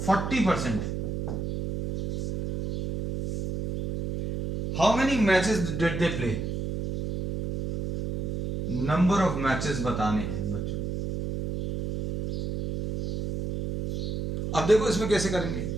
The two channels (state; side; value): noise; right; hum, 3 dB below the sound